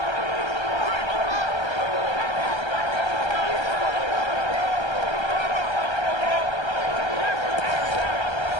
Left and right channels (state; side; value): late; right; 1.3 ms